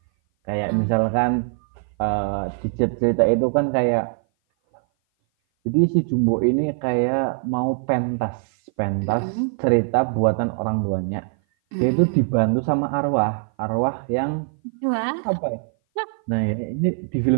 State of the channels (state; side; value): silent; left; 57 dB below the other